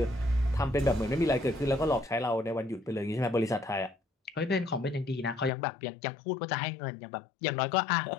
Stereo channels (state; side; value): drops out; right; at 5.5 s